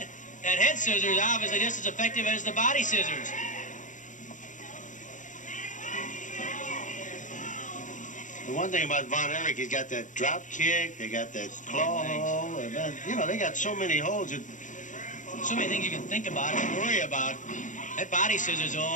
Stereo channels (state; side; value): late; right; 0.37 ms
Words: That head scissors obviously just as effective as the body scissors. The one thing about Von Erich, he's got that drop kick, they got that claw hole, and then, you know, they got so many holds. So many things you can think about and worry about. That body scissors,